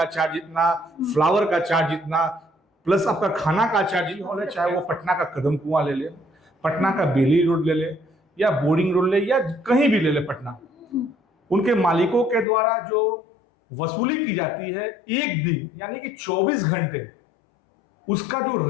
चार्ज इतना, फ्लावर का चार्ज इतना, प्लस आपका खाना का चार्ज हॉल है, चाहे वो पटना का कदम कुआं ले ले, पटना का बेली रोड ले ले, या बोरिंग रोड ले, या कहीं भी ले ले पटना, उनके मालिकों के द्वारा जो वसूली की जाती है एक दिन यानी कि 24 घंटे, उसका जो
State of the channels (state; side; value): drops out; right; at 12.5 s